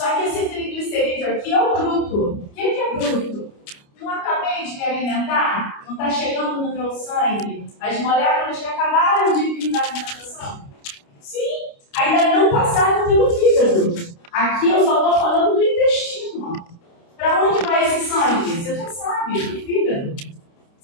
que esse triglicerídeo aqui é o bruto. O que é bruto? Não acabei de me alimentar? Não está chegando no meu sangue as moléculas que acabaram de vir da alimentação? Sim, ainda não passaram pelo fígado. Aqui eu só estou falando do intestino. Para onde vai esse sangue? Você já sabe, do fígado.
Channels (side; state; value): right; late; 29 ms